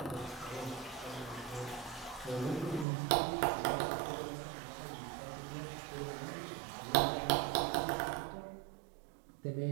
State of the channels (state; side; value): drops out; left; at 2.9 s